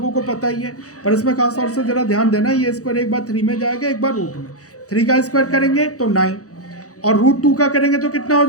को पता ही है, पर इसमें खास तौर से जरा ध्यान देना, ये स्क्वायर एक बार 3 में जाएगा, एक बार रूट में। 3 का स्क्वायर करेंगे तो 9, और √2 का करेंगे तो कितना हो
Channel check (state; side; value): late; right; 0.66 ms